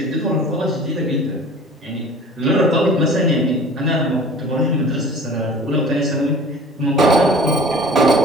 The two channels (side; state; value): both; normal; correlation 0.44